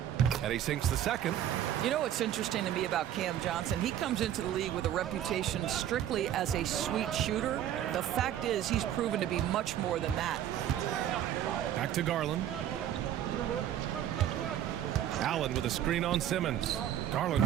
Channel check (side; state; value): left; quieter; 11.0 dB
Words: And he sinks the second. You know what's interesting to me about Cam Johnson? He comes into the league with a reputation strictly as a sweet shooter. The fact is he's proven to be much more than that. Back to Garland. Allen with a screen on Simmons.